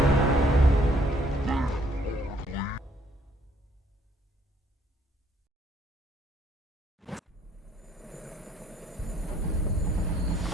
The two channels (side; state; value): both; normal; correlation 0.65